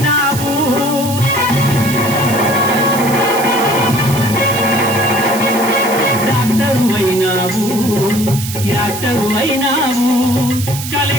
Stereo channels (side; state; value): right; noise; hiss, 8 dB below the sound